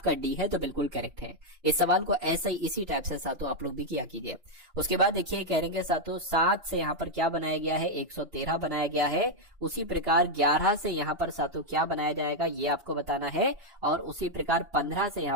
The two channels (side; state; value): left; late; 2.9 ms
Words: डी है तो बिल्कुल करेक्ट है। इस सवाल को ऐसे ही इसी टाइप से सातों आप लोग भी किया कीजिए। उसके बाद देखिए कहेंगे सातों 7 से यहाँ पर क्या बनाया गया है, 113 बनाया गया है। उसी प्रकार 11 से यहाँ पर सातों क्या बनाया जाएगा ये आपको बताना है। और उसी प्रकार 15 से